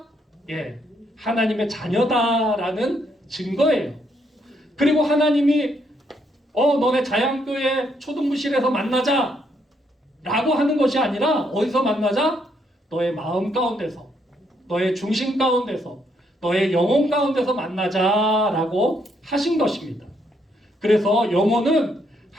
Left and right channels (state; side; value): normal; both; correlation 0.74